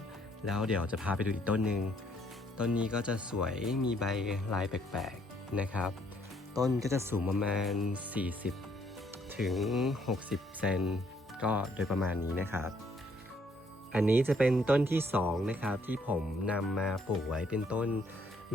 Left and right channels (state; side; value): normal; both; correlation 0.67